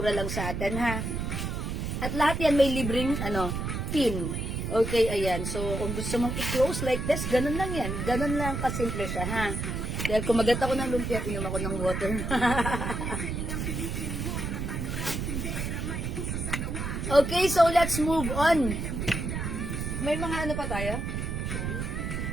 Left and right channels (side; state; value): right; noise; rumble, 3 dB below the sound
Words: lang sa atin, ha? At lahat yan may libreng, pin. Okay, ayan. So, kung gusto mong i-close like this, ganun lang yan. Ganun lang kasimple siya, ha? Dahil kumagat ako ng lumpia, inom ako ng water. Okay, so let's move on. May mga pa tayo?